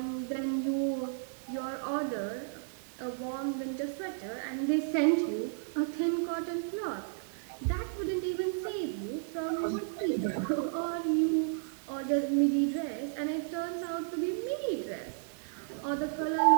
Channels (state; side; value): silent; left; digital silence